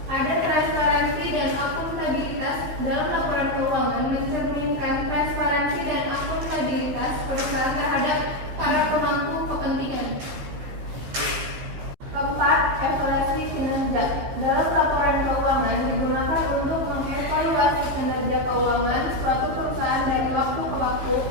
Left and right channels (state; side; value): late; left; 15 ms